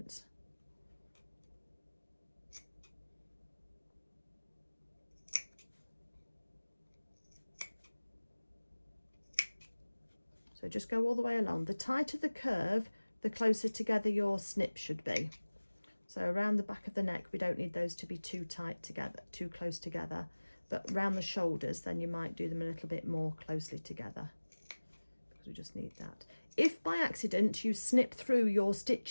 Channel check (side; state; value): both; inverted; correlation -1.00